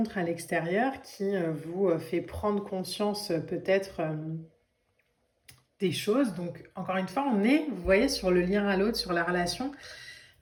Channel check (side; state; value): both; identical; correlation 1.00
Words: à l'extérieur qui vous fait prendre conscience peut-être des choses. Donc, encore une fois, on est, vous voyez, sur le lien à l'autre, sur la relation.